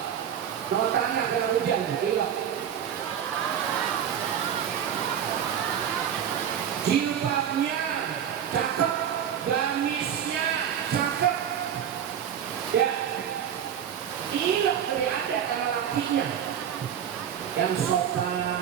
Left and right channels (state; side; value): quieter; left; 9.0 dB